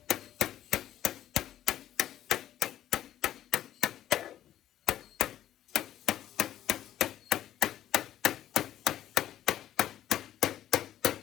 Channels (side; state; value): right; quieter; 12.1 dB